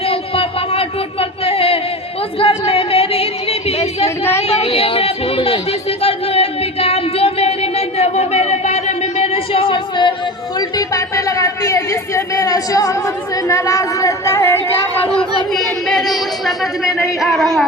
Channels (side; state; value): both; normal; correlation 0.29